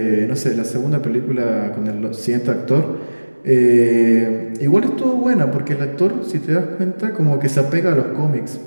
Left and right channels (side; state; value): both; inverted; correlation -1.00